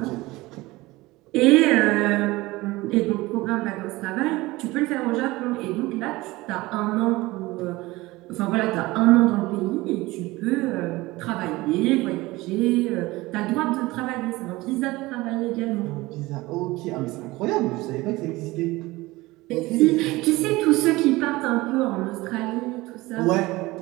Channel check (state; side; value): quieter; left; 20.2 dB